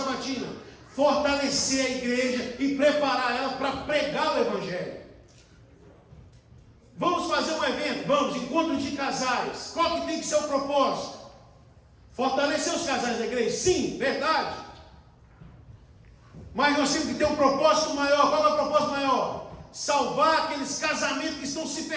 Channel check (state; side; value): identical; both; correlation 1.00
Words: Fortalecer a igreja e preparar ela para pregar o evangelho. Vamos fazer um evento, vamos, encontro de casais. Qual que tem que ser o propósito? Fortalecer os casais da igreja? Sim, verdade. Mas nós temos que ter um propósito maior. Qual é o propósito maior? Salvar aqueles casamentos que estão se